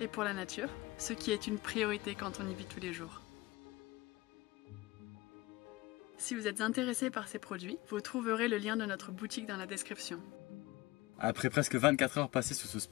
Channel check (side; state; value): right; quieter; 20.0 dB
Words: pour la nature, ce qui est une priorité quand on y vit tous les jours. Si vous êtes intéressé par ces produits, vous trouverez le lien de notre boutique dans la description. Après presque 24 heures passées sur ce